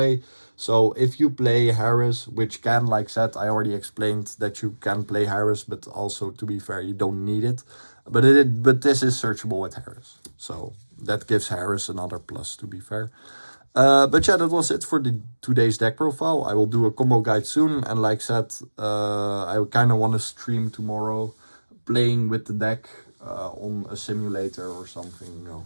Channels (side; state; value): both; inverted; correlation -1.00